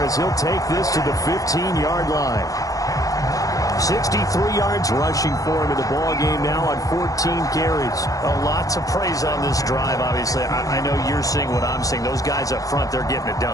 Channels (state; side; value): late; right; 0.17 ms